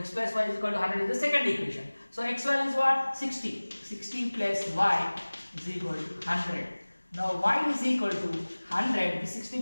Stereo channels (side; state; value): both; inverted; correlation -1.00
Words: plus y is equal to 100 is the second equation. So x value is what? 60. 60 plus y is equal to 100. Now y is equal to 100. The 60